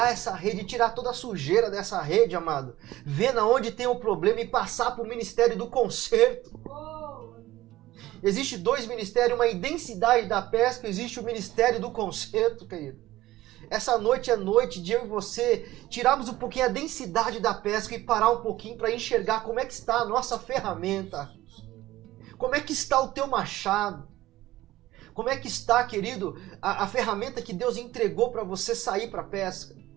essa rede, tirar toda a sujeira dessa rede, amado. Ver na onde tem o problema e passar para o ministério do conserto. Existe dois ministérios, uma densidade da pesca, existe o ministério do conserto, querido. Essa noite é noite de eu e você tirarmos um pouquinho a densidade da pesca e parar um pouquinho para enxergar como é que está a nossa ferramenta. Como é que está o teu machado? Como é que está, querido, a ferramenta que Deus entregou para você sair para a pesca?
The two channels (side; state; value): left; quieter; 16.2 dB